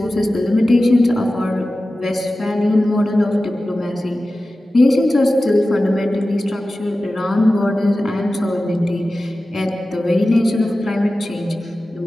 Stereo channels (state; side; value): normal; both; correlation 0.95